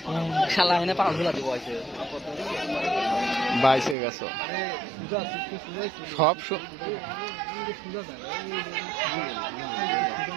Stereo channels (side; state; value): left; drops out; at 4.0 s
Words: বাইশে গেছো সব